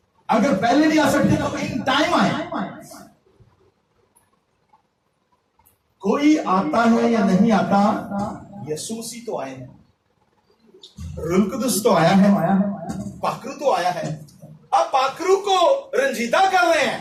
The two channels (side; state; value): both; identical; correlation 1.00